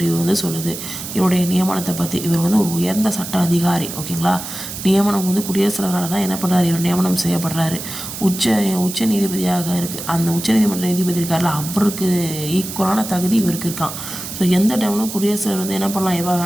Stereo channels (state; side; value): noise; right; hiss, 9 dB below the sound